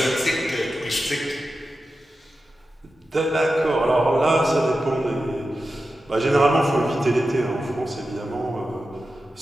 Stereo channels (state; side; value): normal; both; correlation 0.92